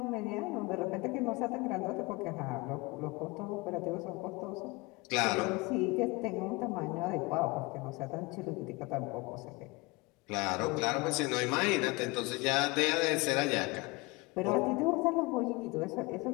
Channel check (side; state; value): right; quieter; 24.2 dB